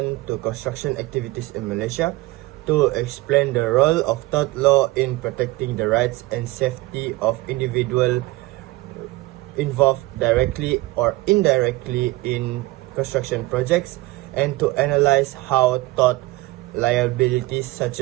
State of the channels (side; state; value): left; quieter; 19.9 dB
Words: to construction activities in Malaysia, to explain the role of tort law in protecting the rights and safety of individuals involved directly or indirectly in construction projects, and to analyze how tort liabilities such